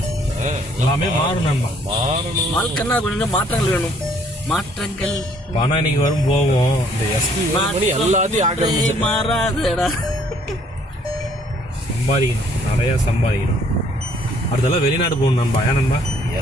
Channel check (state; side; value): normal; both; correlation 0.62